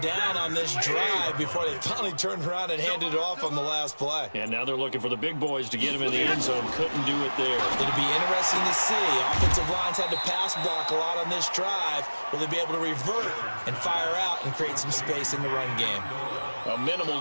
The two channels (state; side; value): inverted; both; correlation -1.00